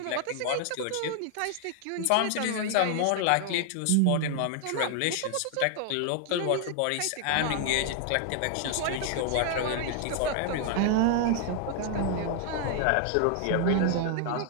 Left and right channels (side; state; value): both; different; correlation 0.00